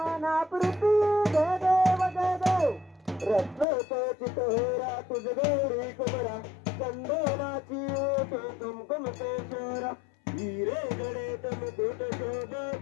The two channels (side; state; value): right; drops out; at 3.7 s